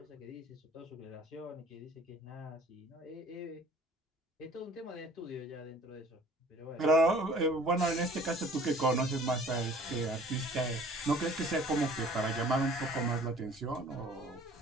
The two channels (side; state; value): both; normal; correlation 0.51